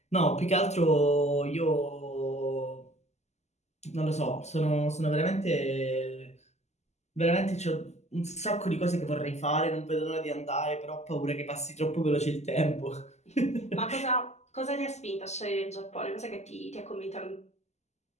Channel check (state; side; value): late; right; 0.33 ms